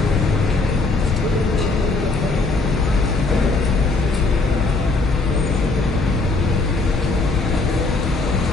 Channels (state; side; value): quieter; right; 3.6 dB